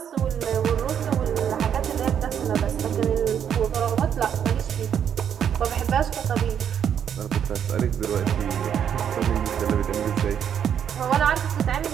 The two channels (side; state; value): left; quieter; 8.6 dB